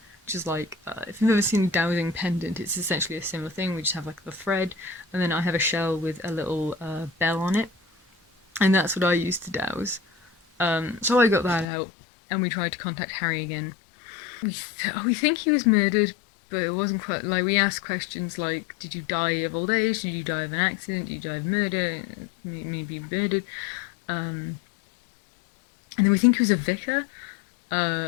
which is like, if you've ever seen a dowsing pendant, it's essentially a similar thing. We just have like the thread, and then I have a shell with a little bell on it, and that's what I use to douse. So I got that out, and we tried to contact Harry again. We think he was murdered, but it wasn't quite, like, we asked questions like, did you die of old age, did you die of an accident, did you die of murder, maybe murdered, and then we think he was a vicar,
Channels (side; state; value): right; drops out; at 11.7 s